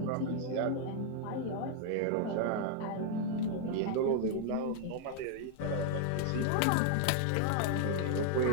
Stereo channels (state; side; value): different; both; correlation 0.00